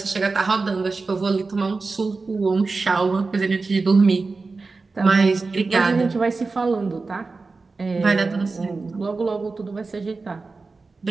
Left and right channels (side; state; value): left; quieter; 4.0 dB